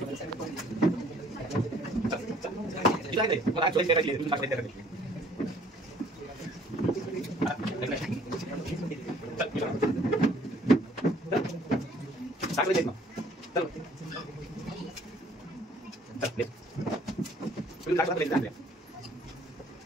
मला चॉईस करायची तुम्ही टाकले करायचे. टाकले ना चल चल तुम्ही टाकले टाकले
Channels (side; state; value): both; normal; correlation 0.58